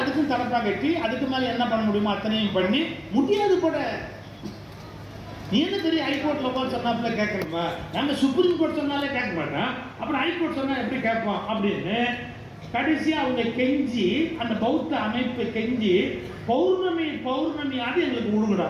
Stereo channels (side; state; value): both; identical; correlation 1.00